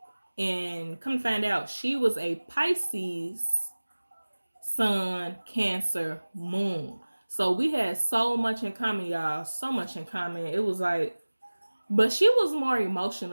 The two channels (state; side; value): inverted; both; correlation -1.00